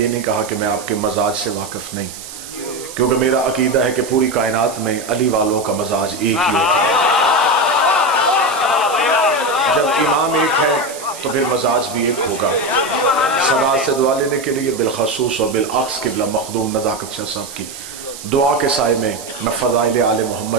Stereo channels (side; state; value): right; noise; hiss, 13 dB below the sound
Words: نہیں کہا کہ میں آپ کے مزاج سے واقف نہیں، کیونکہ میرا عقیدہ ہے کہ پوری کائنات میں علی والوں کا مزاج ایک ہی ہوتا ہے. جب امام ایک ہے تو پھر مزاج بھی ایک ہوگا. صدا سے دعا لینے کے لیے بالخصوص اور بالعکس قبلہ مخدوم نزاکت شاہ صاحب کی دعا کے سائے میں فضائل آل